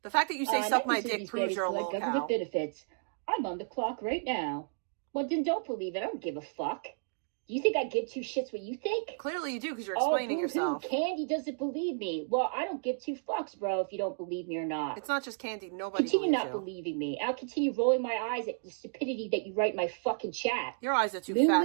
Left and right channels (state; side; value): silent; left; digital silence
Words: The fact that you say suck my dick these proves babies you're a collect locale. government benefits. I'm on the clock right now. Well, then don't believe it. I don't give a fuck. Do you think I give two shits what you think? Clearly you do, because you're explaining yourself. Candy doesn't believe me. Well, I don't give two fucks, bro, if you don't believe me or not. It's not just Candy. Nobody Continue believes not you. believing me. I'll continue rolling my eyes at the stupidity that you write in my fucking chat. Your eyes are too